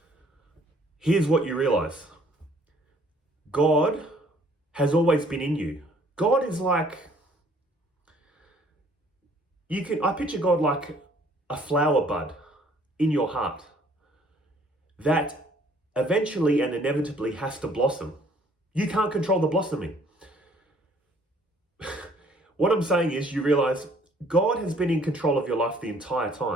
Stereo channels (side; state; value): both; normal; correlation 0.60